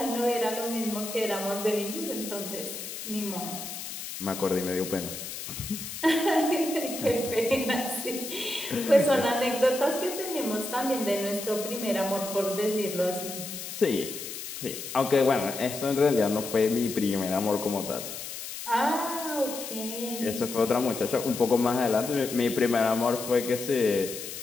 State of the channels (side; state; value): left; noise; hiss, 8 dB below the sound